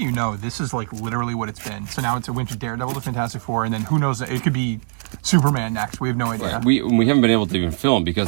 know, this is like literally what it's been. So now it's a went to Daredevil to Fantastic Four, and then who knows? It could be Superman next. We have no idea. Right. We haven't been able to even film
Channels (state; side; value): silent; left; digital silence